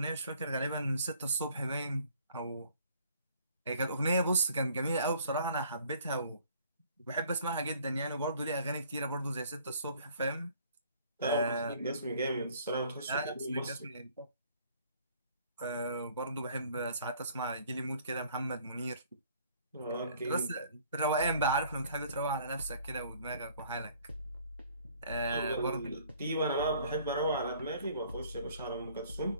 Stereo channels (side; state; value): both; inverted; correlation -0.57